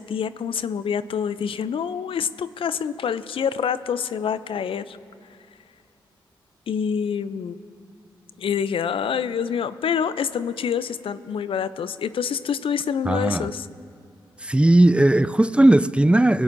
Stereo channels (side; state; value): both; normal; correlation 0.79